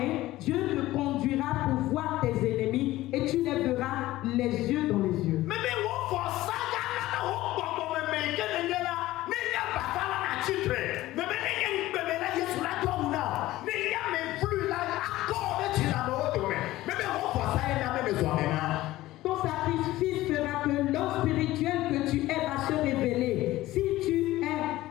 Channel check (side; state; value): right; quieter; 16.5 dB